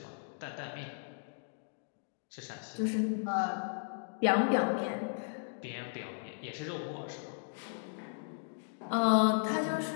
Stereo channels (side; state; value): right; silent; digital silence